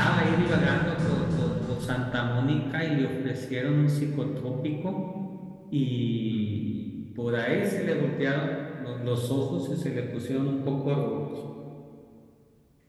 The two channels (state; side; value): identical; both; correlation 1.00